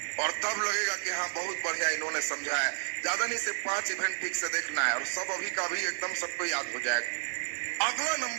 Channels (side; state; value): left; silent; digital silence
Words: और तब लगेगा कि हाँ बहुत बढ़िया इन्होंने समझा है। ज्यादा नहीं, सिर्फ 5 इवेंट ठीक से देखना है और सब अभी का अभी एकदम सबको याद हो जाएगा। अगला